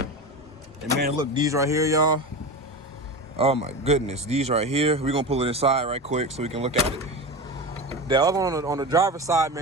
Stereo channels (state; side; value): normal; both; correlation 0.25